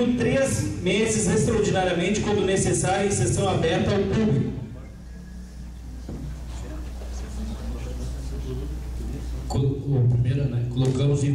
3 meses extraordinariamente, quando necessário, em sessão aberta ao público. O primeiro, né? Colocamos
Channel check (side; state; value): both; identical; correlation 1.00